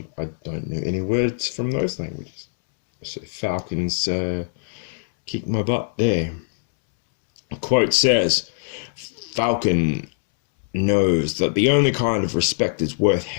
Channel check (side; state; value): right; silent; 64 dB below the other